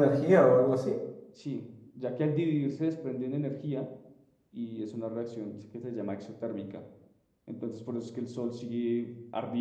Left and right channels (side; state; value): both; identical; correlation 1.00